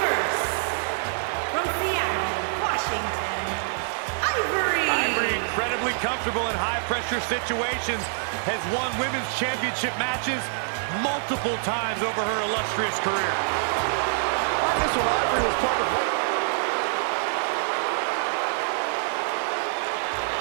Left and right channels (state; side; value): silent; left; digital silence